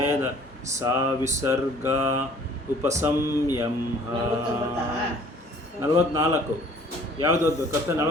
ಸಾ ವಿಸರ್ಗ ಉಪಸಂಯಂಹ 44 ಯಾವುದು ಓದಬೇಕು ಕಷ್ಟ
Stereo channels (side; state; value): both; normal; correlation 0.54